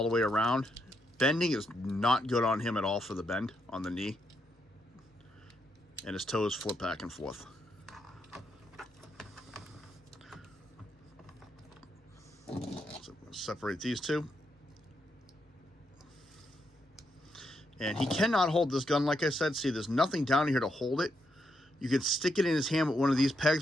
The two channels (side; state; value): both; normal; correlation 0.80